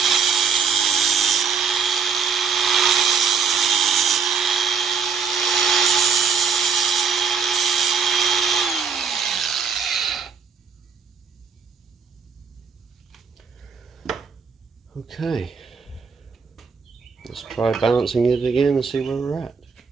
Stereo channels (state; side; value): quieter; left; 5.9 dB